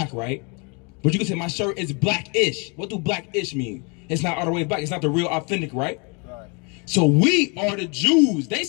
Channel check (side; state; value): right; quieter; 32.6 dB